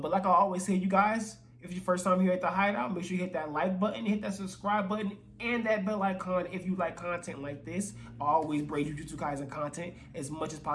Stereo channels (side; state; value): both; identical; correlation 1.00